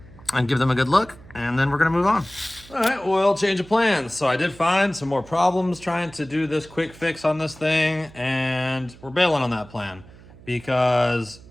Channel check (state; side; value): noise; right; hum, 21 dB below the sound